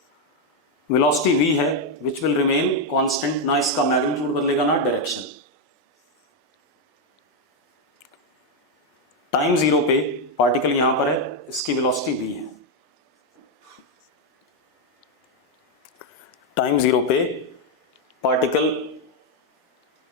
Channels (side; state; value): both; normal; correlation 0.03